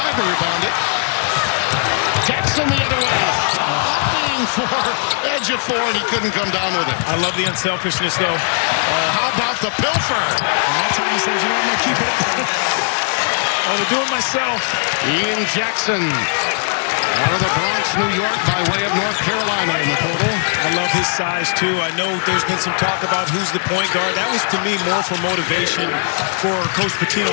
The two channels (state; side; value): silent; right; digital silence